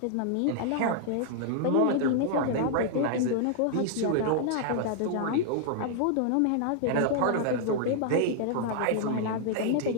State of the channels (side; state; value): both; different; correlation -0.01